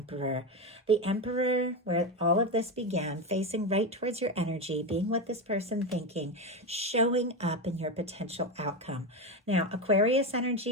The Emperor, where all of this began, facing right towards your energy, being what this person thinking, showing up in your potential outcome. Now, Aquarius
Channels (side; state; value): both; normal; correlation 0.15